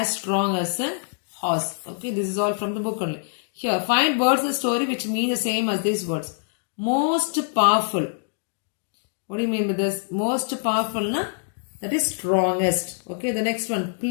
strong as a horse. Okay, this is all from the book only. Here, find words in the story which mean the same as these words. Most powerful. What do you mean by this? Most powerful na? That is strongest. Okay, the next one,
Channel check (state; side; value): silent; right; digital silence